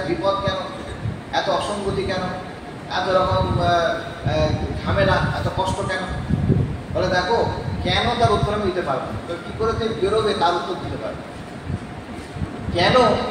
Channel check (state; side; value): identical; both; correlation 1.00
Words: বিপদ কেন, এত অসঙ্গতি কেন, এত রকম ঝামেলা, এত কষ্ট কেন? বলে দেখো কেন, তার উত্তর আমি দিতে পারবো, তো কী করে তুমি বেরোবে তার উত্তর দিতে পারবে। কেন